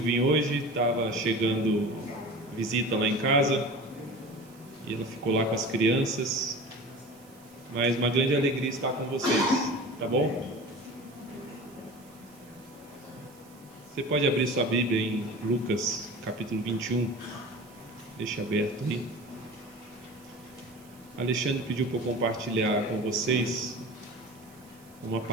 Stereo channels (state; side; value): noise; right; hiss, 26 dB below the sound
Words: hoje, estava chegando visita lá em casa e ela ficou lá com as crianças. Mas uma grande alegria estar com vocês, tá bom? Você pode abrir sua Bíblia em Lucas, capítulo 21. Deixa aberto aí. Alexandre pediu para eu compartilhar com vocês uma